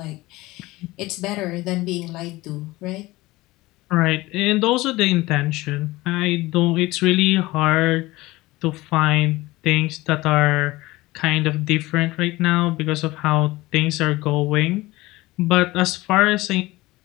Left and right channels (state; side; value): quieter; right; 19.6 dB